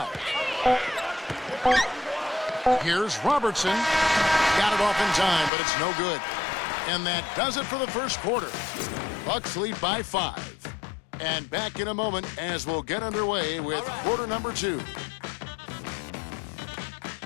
Here's Robertson. Got it off in time, but it's no good. And that does it for the first quarter. Bucks lead by 5. And back in a moment as we'll get underway with quarter number 2.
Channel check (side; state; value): right; drops out; at 5.5 s